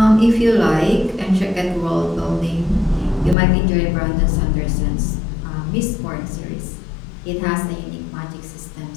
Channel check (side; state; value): right; drops out; at 3.4 s